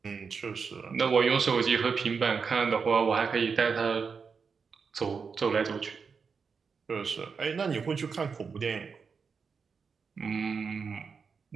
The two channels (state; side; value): quieter; left; 5.6 dB